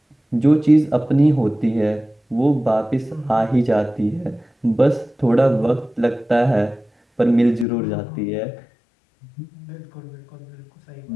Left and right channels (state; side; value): drops out; right; at 7.7 s